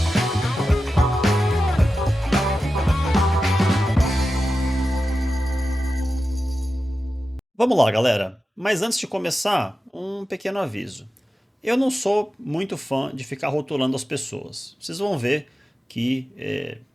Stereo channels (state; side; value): normal; both; correlation 0.92